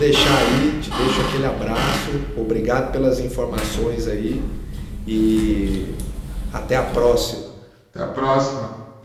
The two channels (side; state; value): both; identical; correlation 1.00